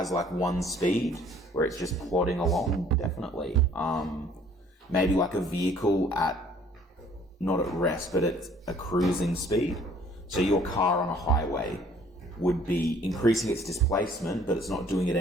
one speed where it's just plodding along, definitely. Maybe like a vehicle at, not at rest, but at a cruising speed. So your car on a highway would be increasing its displacement, but it's not doing it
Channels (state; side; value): normal; both; correlation 0.57